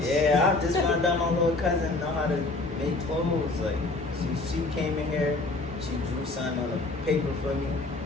Yeah, I just found out my little cousin know how to make clothes. Like, she came in here, she drew something on a paper for me,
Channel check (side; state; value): right; quieter; 3.2 dB